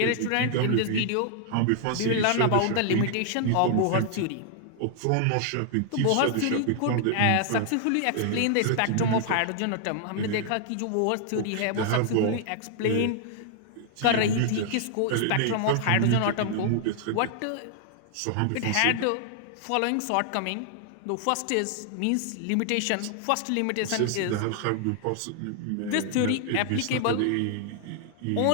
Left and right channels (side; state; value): both; different; correlation 0.00